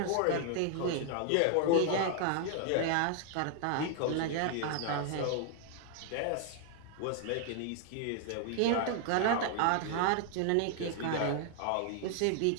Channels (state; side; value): different; both; correlation 0.00